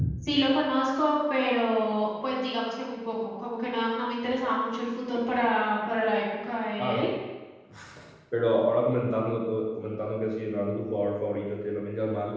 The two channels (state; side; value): identical; both; correlation 1.00